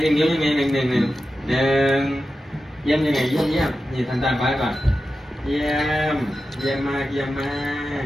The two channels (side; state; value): both; normal; correlation 0.92